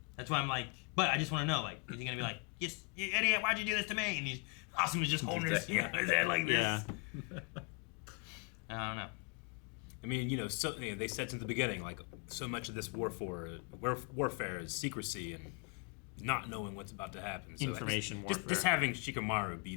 That's why I'm like, but I just want to know, like, is he gonna be like, "Yes, you idiot! Why'd you do this to me?" And he's Asuma's just holding his head like this. Yeah. I don't know. I mean, they said since the beginning, like, so much of this warfare is secrecy and not knowing what's about to happen. So Information just warfare. having Shikamaru be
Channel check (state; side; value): quieter; right; 31.3 dB